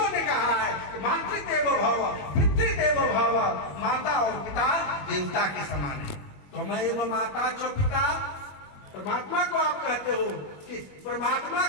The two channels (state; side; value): late; right; 21 ms